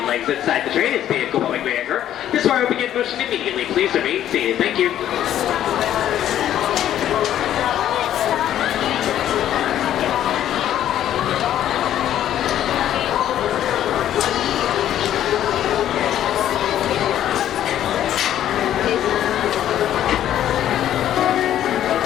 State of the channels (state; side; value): quieter; right; 11.5 dB